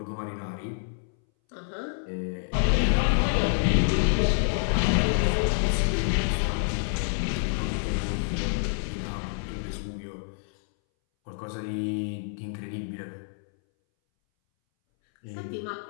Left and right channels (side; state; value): right; silent; 60 dB below the other